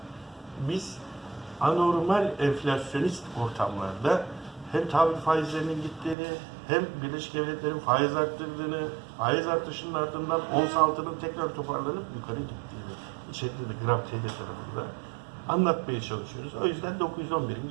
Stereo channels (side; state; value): left; drops out; at 6.2 s